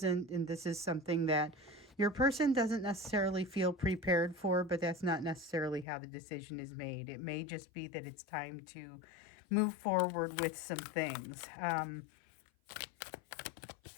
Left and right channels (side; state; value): right; drops out; at 5.9 s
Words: And this is something that your person doesn't necessarily feel prepared for, but that's not necessarily how the decision is made. It may just be that it's time to move forward with some things.